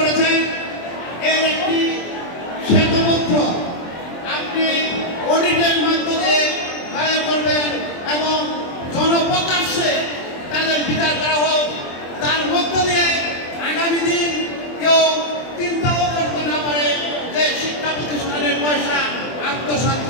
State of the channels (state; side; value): late; right; 24 ms